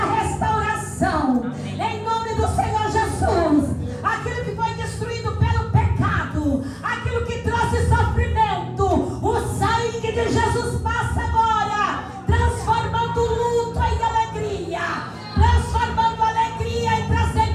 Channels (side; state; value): both; identical; correlation 1.00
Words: restauração em nome do Senhor Jesus. Aquilo que foi destruído pelo pecado, aquilo que trouxe sofrimento, o sangue de Jesus passa agora, transformando o luto em alegria, transformando a alegria e